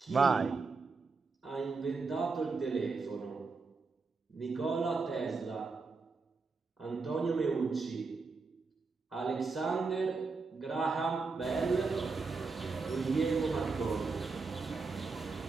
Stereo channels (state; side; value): quieter; left; 4.3 dB